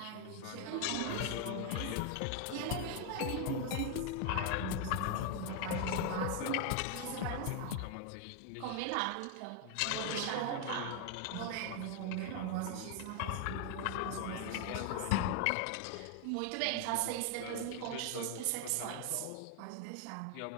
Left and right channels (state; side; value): different; both; correlation 0.00